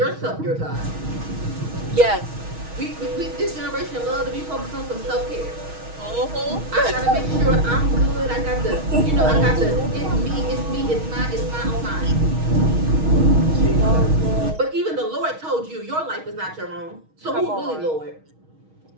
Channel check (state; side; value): late; left; 6.3 ms